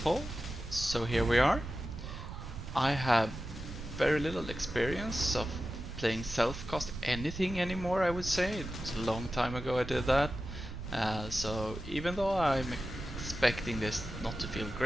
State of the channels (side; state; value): right; noise; rumble, 9 dB below the sound